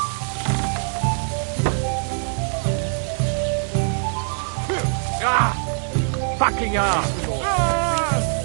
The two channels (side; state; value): left; silent; digital silence